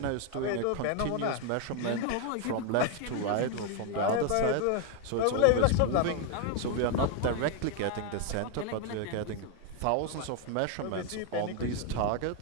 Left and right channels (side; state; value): both; different; correlation 0.01